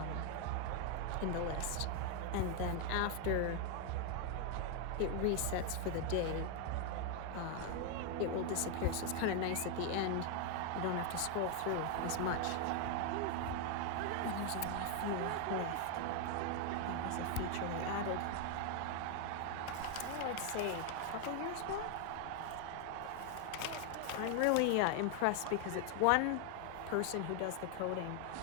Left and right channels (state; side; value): different; both; correlation 0.01